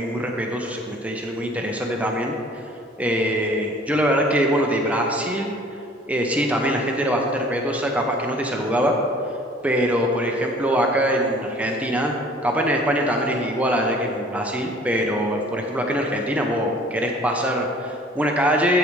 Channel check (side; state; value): both; normal; correlation 0.51